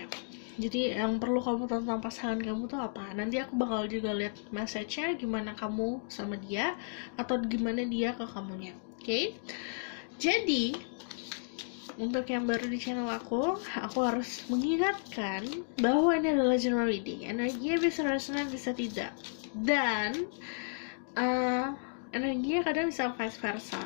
Jadi yang perlu kamu tahu tentang pasangan kamu tuh apa. Nanti aku bakal juga lihat message-nya gimana kamu sama dia, atau gimana dia ke kamunya. Oke? Jadi untuk yang baru di channel aku harus mengingatkan bahwa ini adalah general reading. Energinya bisa resonate, bisa tidak. Dan energinya kadang bisa vice versa.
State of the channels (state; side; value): silent; right; digital silence